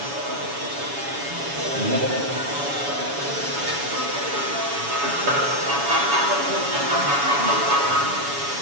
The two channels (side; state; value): left; late; 7.1 ms